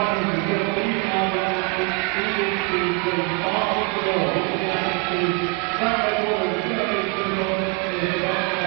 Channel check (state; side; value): quieter; left; 28.0 dB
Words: the final heat of the swimming discipline at the 2011 European Modern Pentathlon Championships at Medway Park